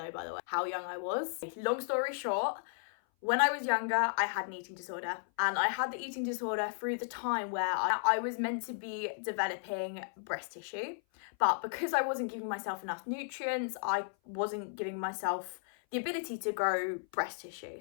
by the way, how young I was. Long story short, when I was younger, I had an eating disorder, and I had the eating disorder through the time where I was meant to be developing breast tissue, but because I wasn't giving myself enough nutrients, I wasn't giving myself the ability to grow breast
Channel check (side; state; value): right; silent; 55 dB below the other